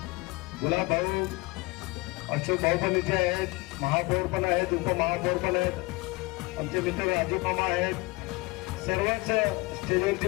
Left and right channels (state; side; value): quieter; right; 24.1 dB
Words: गुलाब भाऊ, अशोक भाऊ पण इथे आहेत, महापौर पण आहेत, उपमहापौर पण आहेत, आमचे मित्र राजू मामा आहेत, सर्वच स्टेजवरची